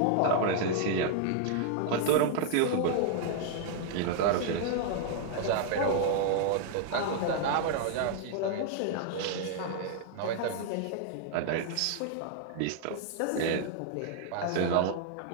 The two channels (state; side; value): different; both; correlation -0.01